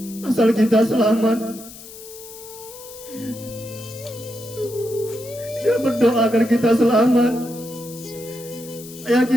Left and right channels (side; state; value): left; noise; hiss, 16 dB below the sound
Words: asal kita selamat. Dia berdoa agar kita selamat. Ayah